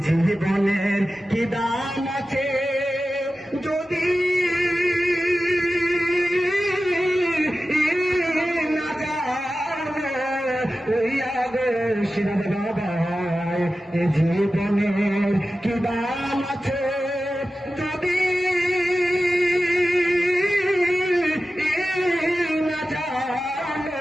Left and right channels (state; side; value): normal; both; correlation 0.94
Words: জীবনের কি দাম আছে যদি না জানো হইয়া গো সিরাজ বাবা এ জীবনের কি দাম আছে যদি না জানো